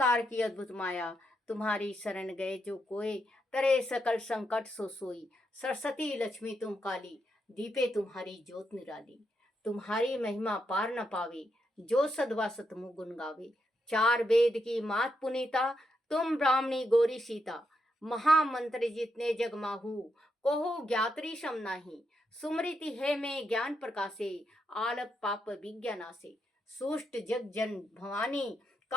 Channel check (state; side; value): normal; both; correlation 0.81